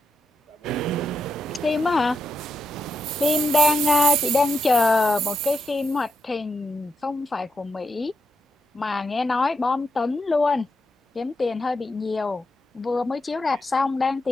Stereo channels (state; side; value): normal; both; correlation 0.83